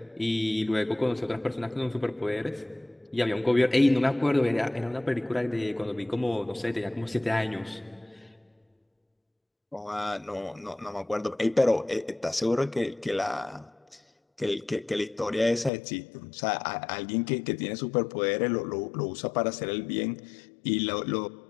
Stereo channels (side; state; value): right; drops out; at 15.7 s